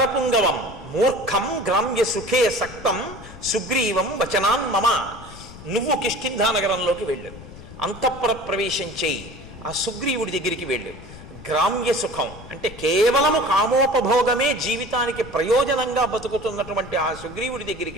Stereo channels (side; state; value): left; noise; rumble, 16 dB below the sound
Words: మూర్ఖం గ్రామ్య సుఖే సక్తం సుగ్రీవం వచనాన్ మమ. నువ్వు కిష్కింధా నగరంలోకి వెళ్ళు, అంతఃపుర ప్రవేశం చేయి, ఆ సుగ్రీవుడి దగ్గరికి వెళ్ళు. గ్రామ్య సుఖం అంటే కేవలము కామోపభోగమే జీవితానికి ప్రయోజనంగా బతుకుతున్నటువంటి ఆ సుగ్రీవుడి